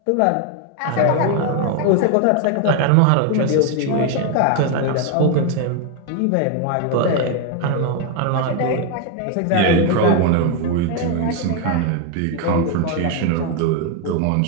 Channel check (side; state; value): both; different; correlation 0.01